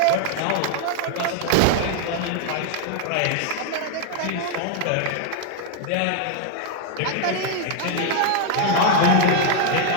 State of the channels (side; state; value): both; different; correlation 0.00